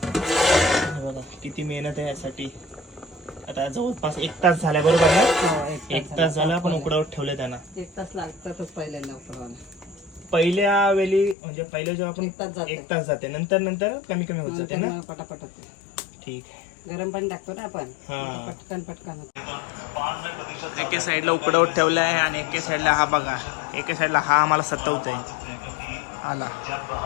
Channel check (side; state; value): right; drops out; at 11.4 s